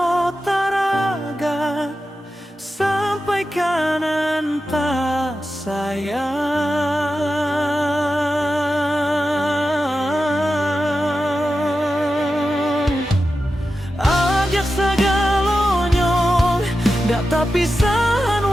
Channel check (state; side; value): normal; both; correlation 0.91